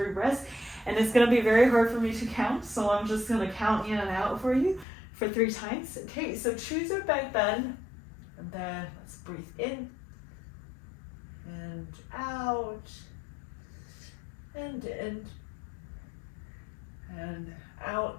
breaths, and it's gonna be very hard for me to count, so I'm just gonna count in and out for you for 3 times. Okay, so choose your back bend, and then let's breathe in, and out, and in, and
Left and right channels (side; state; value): right; drops out; at 4.9 s